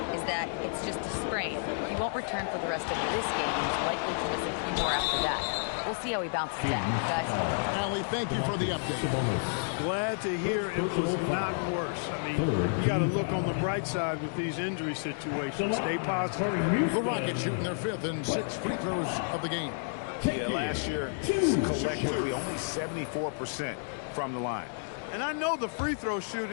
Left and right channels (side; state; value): right; silent; digital silence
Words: is that it's just a sprain. He won't return for the rest of this game, and he's likely to miss a few more after that. We'll see how he bounces back, guys. Allie, thank you for the update. Glad to hear it was not worse. I mean, you got to look on the bright side with these injury situations. Stay positive. The Rockets shooting their 5th and 6th free throws of the game. Yeah, last year, collectively, only 74% from the line. And I know the free throw